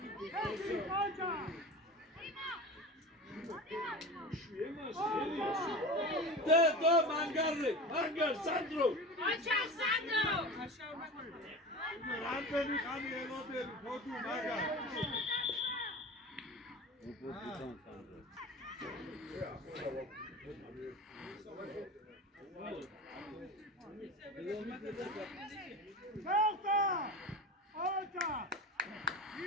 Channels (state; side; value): normal; both; correlation 0.31